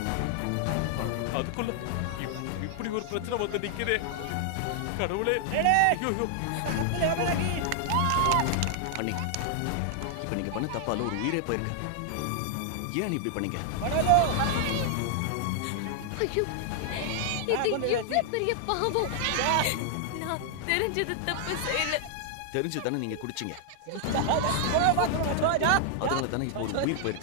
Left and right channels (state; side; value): different; both; correlation 0.00